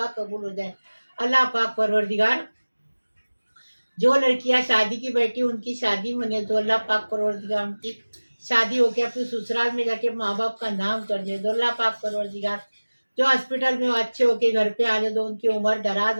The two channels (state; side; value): inverted; both; correlation -1.00